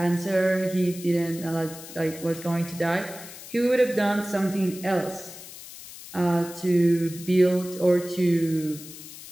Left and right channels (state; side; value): noise; left; hiss, 15 dB below the sound